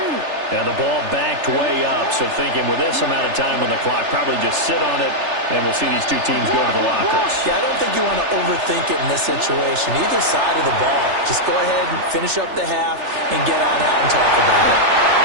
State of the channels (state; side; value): late; left; 3.4 ms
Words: And the ball backed way up, so thinking with this amount of time on the clock, probably just sit on it, and we'll see these two teams go to the lockers. Yeah, I don't think you want to overthink it in this situation. Either side of the ball. Just go ahead and finish up the half and get on out and talk about it.